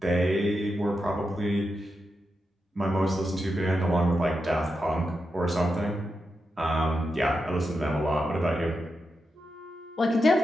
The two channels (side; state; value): both; normal; correlation 0.87